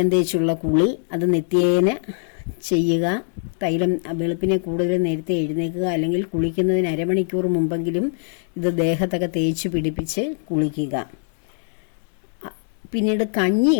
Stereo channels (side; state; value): right; silent; digital silence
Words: തേച്ചുള്ള കുളി അത് നിത്യേന ചെയ്യുക. തൈലം വെളുപ്പിനെ കൂടുതൽ നേരത്തെ എഴുന്നേൽക്കുക, അല്ലെങ്കിൽ കുളിക്കുന്നതിന് അരമണിക്കൂർ മുമ്പെങ്കിലും ഇത് ദേഹത്തൊക്കെ തേച്ച് പിടിപ്പിച്ച് കുളിക്കുക. പിന്നീട്